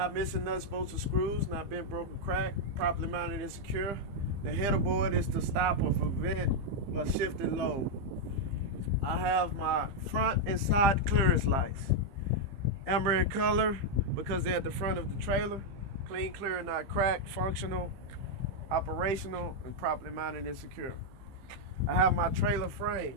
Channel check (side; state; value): left; late; 15 ms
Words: missing nuts, bolts, or screws. Not bent, broken, cracked. Properly mounted and secure. The header board is to stop or prevent a shifted load. I have my front and side clearance lights. Amber in color because they're at the front of the trailer. Clean, clear, and not cracked. Functional, operational, and properly mounted and secure. I have my trailer